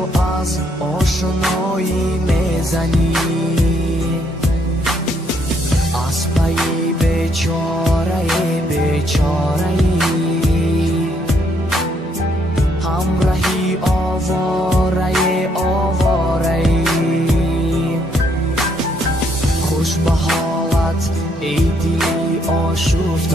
از آشنایی میزنی. از پی بیچاره بیچاره‌ای، همراهی آواره آواره‌ای. خوش به حالت ای دلی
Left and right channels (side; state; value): both; normal; correlation 0.71